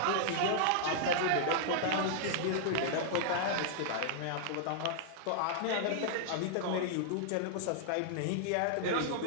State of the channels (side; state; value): both; different; correlation -0.01